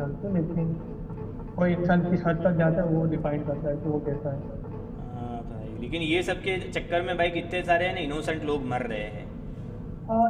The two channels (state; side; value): identical; both; correlation 1.00